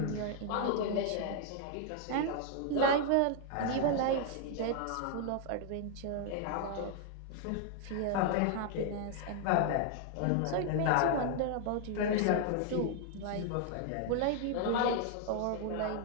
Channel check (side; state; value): both; different; correlation 0.00